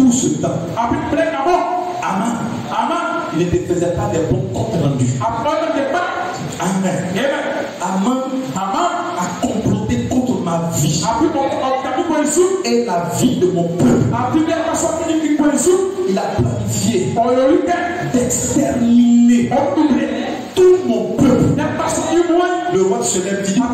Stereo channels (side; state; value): both; identical; correlation 1.00